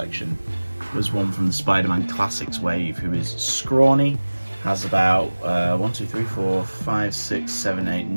was one from the Spider-Man Classics wave, who is scrawny, has about 9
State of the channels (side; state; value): both; inverted; correlation -1.00